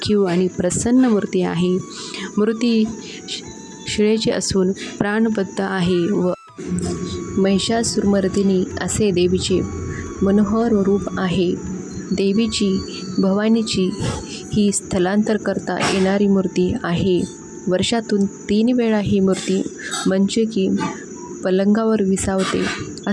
आणि प्रसन्न मूर्ती आहे. मूर्ती शिळेची असून प्राणबद्ध आहे व महिषासुरमर्दिनी असे देवीचे मनोहर रूप आहे. देवीची भवानीची ही स्थलांतर करता येणारी मूर्ती आहे. वर्षातून 3 वेळा ही मूर्ती मंचकी पलंगावर विसावते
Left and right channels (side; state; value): both; identical; correlation 1.00